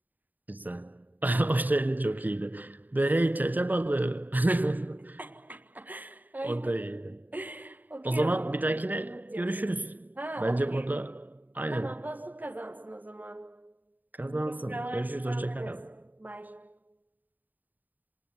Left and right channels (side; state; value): left; late; 0.085 ms